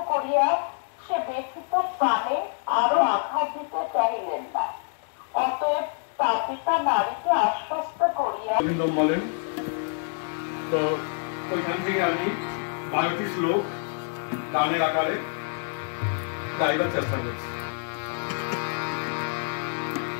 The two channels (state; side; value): silent; right; 60 dB below the other